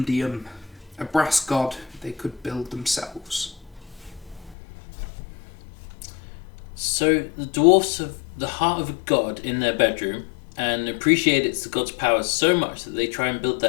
a brass god they could build themselves. So the dwarfs have the heart of a god in their bedroom and appreciate it's the god's powers so much that they try and build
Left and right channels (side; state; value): right; drops out; at 4.5 s